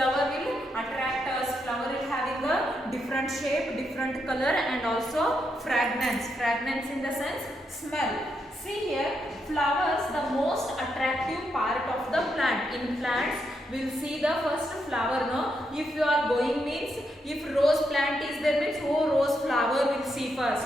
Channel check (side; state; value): both; normal; correlation 0.81